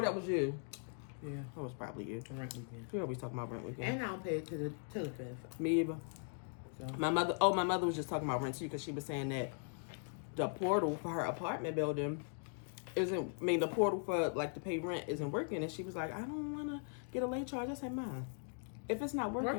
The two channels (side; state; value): right; silent; 51 dB below the other